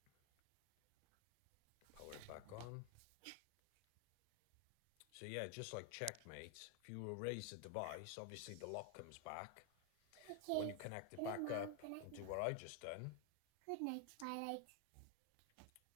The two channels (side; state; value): both; different; correlation 0.01